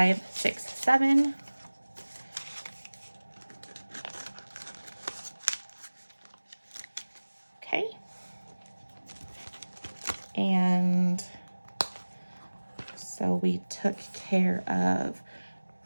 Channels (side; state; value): both; inverted; correlation -1.00